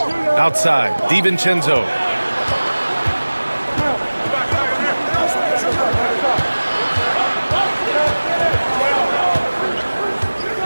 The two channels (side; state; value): both; inverted; correlation -1.00